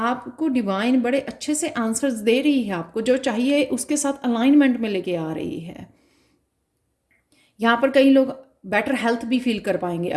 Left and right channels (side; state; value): both; identical; correlation 1.00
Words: डिवाइन बड़े अच्छे से आंसर्स दे रही है, आपको जो चाहिए उसके साथ अलाइनमेंट में लेके आ रही है। यहाँ पर कई लोग बेटर हेल्थ भी फील कर पाएंगे